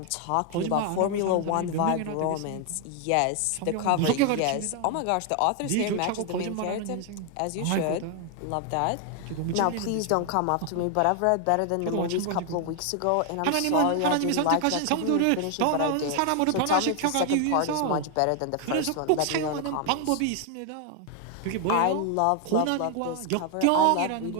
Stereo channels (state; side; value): different; both; correlation 0.00